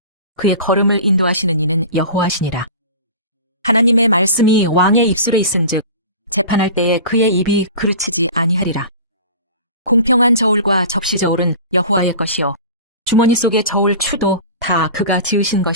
그의 걸음을 인도하시는 이는 여호와시니라. 하나님의 말씀이 왕의 입술에 있은즉 재판할 때에 그의 입이 그르치지 아니하리라. 공평한 저울과 접시 저울은 여호와의 것이요 주머니 속의 저울 추도 다 그가 지으신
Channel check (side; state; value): both; inverted; correlation -0.37